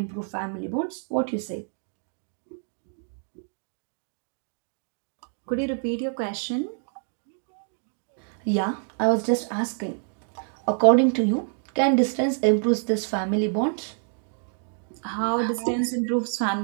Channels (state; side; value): silent; left; 55 dB below the other